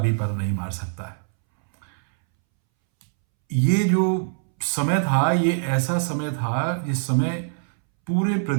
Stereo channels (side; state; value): left; silent; 63 dB below the other